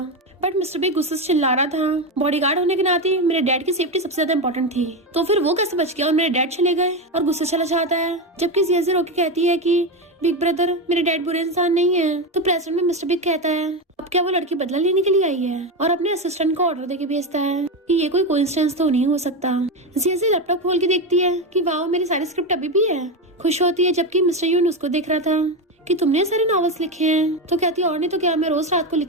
बट मिस्टर बिग गुस्से से चिल्ला रहा था, बॉडीगार्ड होने के नाते मेरे डैड की सेफ्टी सबसे ज्यादा इंपॉर्टेंट थी, तो फिर वो कैसे बच गया और मेरे डैड चले गए, और गुस्से चला जाता है। जबकि जिया रोके कहती है कि बिग ब्रदर मेरे डैड बुरे इंसान नहीं है। तो प्रेसिडेंट में मिस्टर बिग कहता है, अब क्या वो लड़की बदला लेने के लिए आई है, और अपने असिस्टेंट को ऑर्डर देके भेजता है कि ये कोई कोइंसिडेंस तो नहीं हो सकता। जिया लैपटॉप खोल के देखती है कि वाओ मेरी सारी स्क्रिप्ट अभी भी है, खुश होती है। जबकि मिस्टर यून उसको देख रहा था कि तुमने सारे नॉवेल्स लिखे हैं। तो कहती है और नहीं तो क्या, मैं रोज रात को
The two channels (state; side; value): normal; both; correlation 0.14